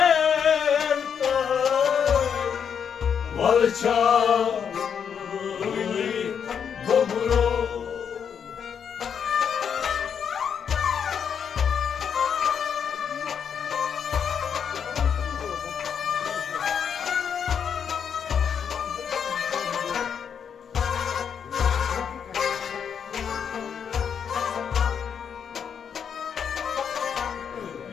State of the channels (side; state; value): right; quieter; 7.5 dB